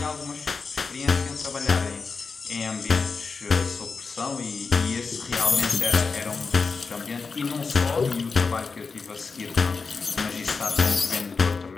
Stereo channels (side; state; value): right; quieter; 4.7 dB